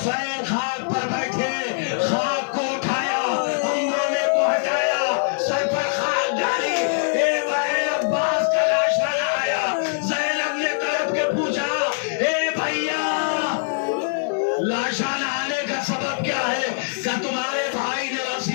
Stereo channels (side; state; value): right; silent; 60 dB below the other